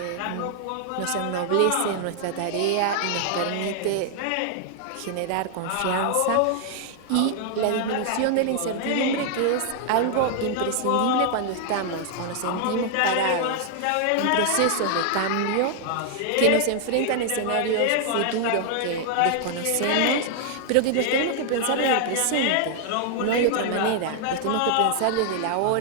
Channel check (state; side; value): different; both; correlation 0.00